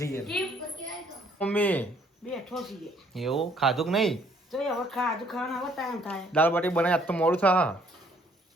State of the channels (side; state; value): both; normal; correlation 0.63